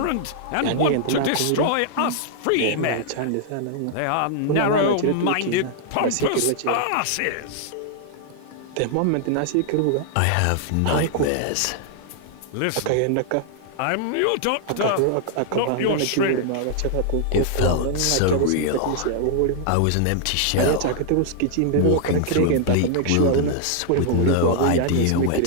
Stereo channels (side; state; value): both; different; correlation 0.00